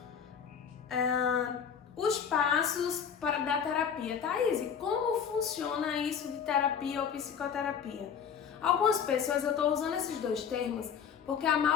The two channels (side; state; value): right; quieter; 7.4 dB